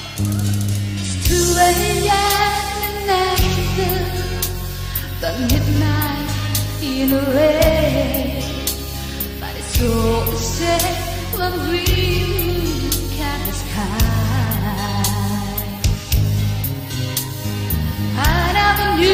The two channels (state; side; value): identical; both; correlation 1.00